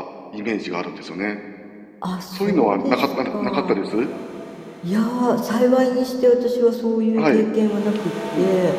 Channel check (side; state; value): both; identical; correlation 1.00